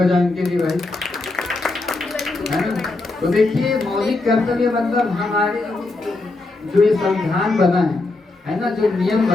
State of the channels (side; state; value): right; quieter; 3.2 dB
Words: इनके लिए भाई, है ना। तो देखिए, मौलिक कर्तव्य मतलब हमारे जो ये संविधान बना है ना, जो नियम